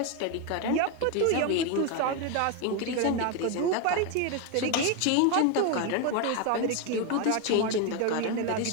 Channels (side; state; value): both; different; correlation 0.02